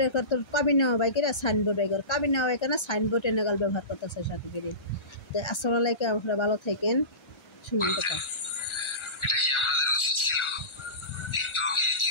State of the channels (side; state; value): right; late; 1.3 ms